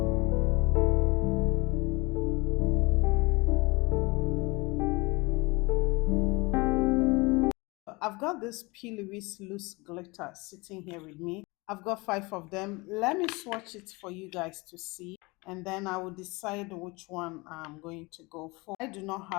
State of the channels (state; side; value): quieter; right; 25.1 dB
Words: I've got this P. Louise loose glitter sitting here with me. I've got 5 of them. Let me swatch it for you guys to see, and then I will decide which one I'm going to go for. I do not